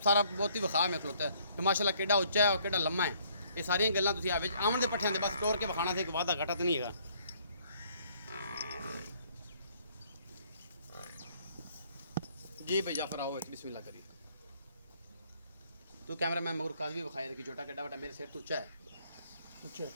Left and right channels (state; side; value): inverted; both; correlation -0.63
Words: ਸਾਰਾ ਬਹੁਤ ਹੀ ਵਿਖਾ ਮੈਂ ਖਲੋਤਾ ਤੇ ਮਾਸ਼ਾਅੱਲਾ ਕਿਹੜਾ ਉੱਚਾ ਹੈ ਔਰ ਕਿਹੜਾ ਲੰਮਾ ਹੈ ਇਹ ਸਾਰੀਆਂ ਗੱਲਾਂ ਤੁਸੀਂ ਆ ਵਿੱਚ ਆਉਣ ਦੇ ਪੱਠਿਆਂ ਦੇ ਬਸ ਤੋੜ ਕੇ ਵਿਖਾਣਾ ਸੀ, ਇੱਕ ਵਾਧਾ ਘਟਾ ਤਾਂ ਨਹੀਂ ਹੈਗਾ। जी भाई जाफर आओ बिस्मिल्लाह करिए। तो कैमरा मैन मगर काज भी बखाया कि छोटा कड्डा बटा मेरे सिर तो ऊंचा है,